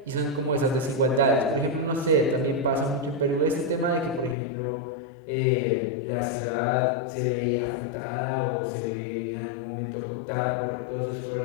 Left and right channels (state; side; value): drops out; right; at 4.4 s